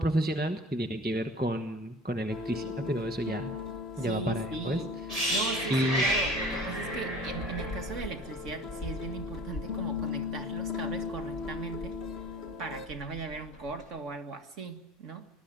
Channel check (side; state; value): both; normal; correlation 0.44